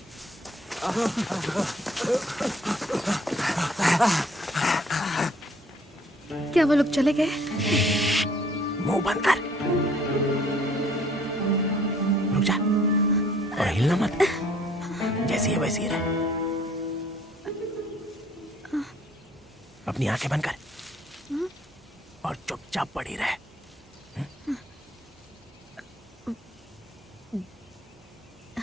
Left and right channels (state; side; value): normal; both; correlation 0.59